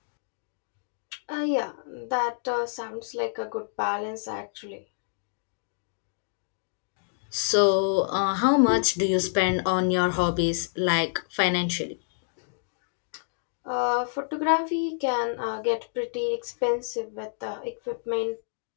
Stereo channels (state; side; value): silent; right; digital silence